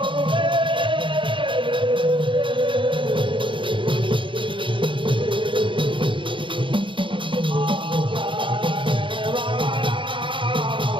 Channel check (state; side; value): late; left; 0.24 ms